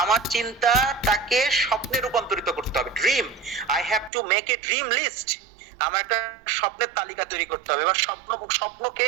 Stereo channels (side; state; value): left; drops out; at 4.1 s